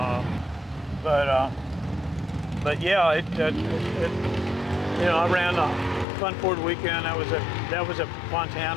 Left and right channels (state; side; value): drops out; right; at 6.1 s